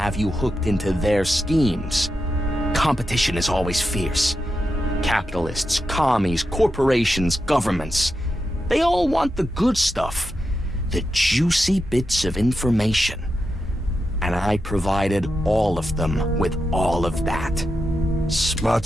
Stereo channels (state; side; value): normal; both; correlation 0.88